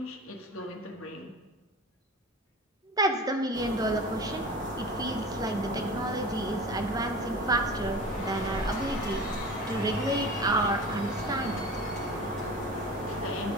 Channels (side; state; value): both; normal; correlation 0.35